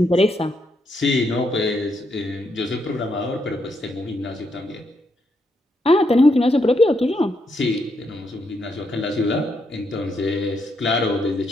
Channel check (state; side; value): normal; both; correlation 0.79